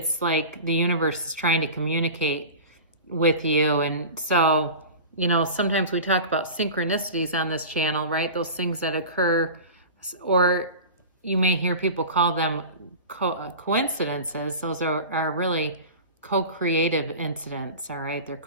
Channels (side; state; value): both; inverted; correlation -0.34